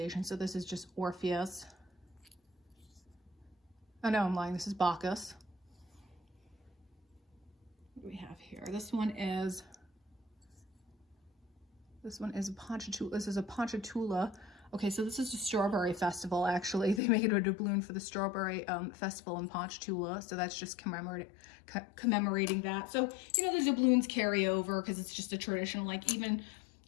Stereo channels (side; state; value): right; drops out; at 17.0 s